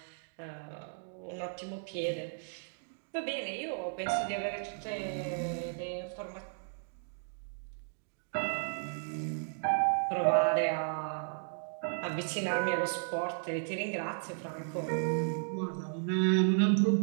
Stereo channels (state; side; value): silent; left; digital silence